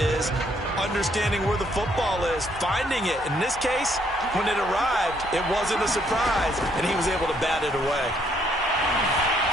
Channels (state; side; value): normal; both; correlation 0.69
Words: understanding where the football is, finding it. In this case, when it arrived, it wasn't a surprise, and he was able to bat it away.